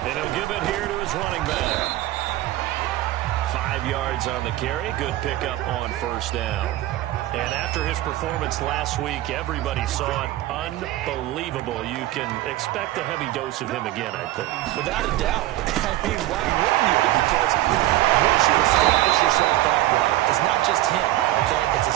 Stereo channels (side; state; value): left; quieter; 15.8 dB